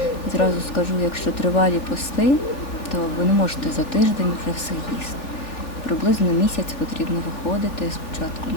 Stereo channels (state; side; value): late; right; 3.4 ms